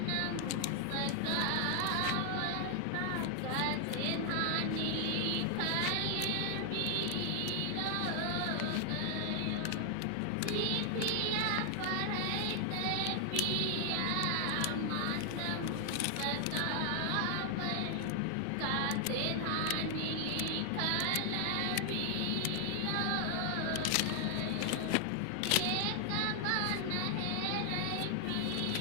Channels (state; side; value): different; both; correlation 0.00